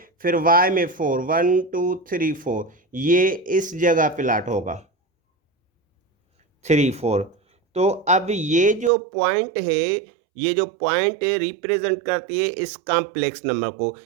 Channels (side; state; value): left; drops out; at 8.9 s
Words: फिर y में 4, 1 2 3 4, ये इस जगह प्लाट होगा 3 4। तो अब ये जो पॉइंट है, ये जो पॉइंट रिप्रेजेंट करती है इस कॉम्प्लेक्स नंबर को।